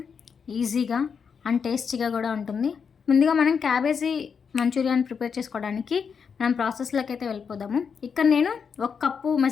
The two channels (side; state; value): right; quieter; 6.3 dB